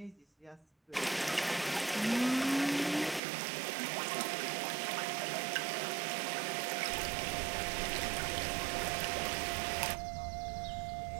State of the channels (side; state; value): left; drops out; at 3.2 s